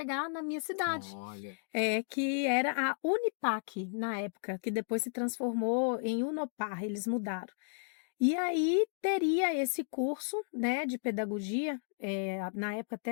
na minha cidade, Olha. que era a Unipac, na época, que depois se transformou em Unopar, eles mudaram. E aí teria esse curso, né, de pedagogia, na época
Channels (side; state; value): right; silent; digital silence